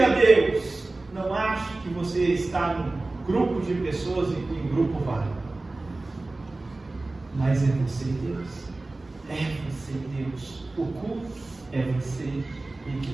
Deus. Não ache que você está num grupo de pessoas e que em grupo vale. Mas é você e Deus. É você e Deus. O culto é você e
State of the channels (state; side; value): quieter; left; 3.1 dB